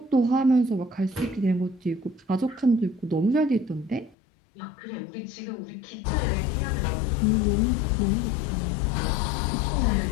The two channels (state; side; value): drops out; right; at 4.2 s